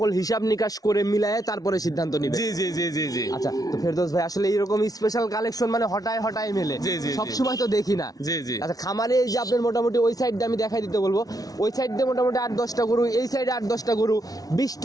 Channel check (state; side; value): late; right; 0.18 ms